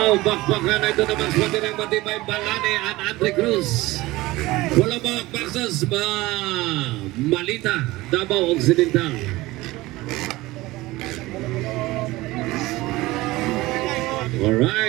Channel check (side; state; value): left; quieter; 19.4 dB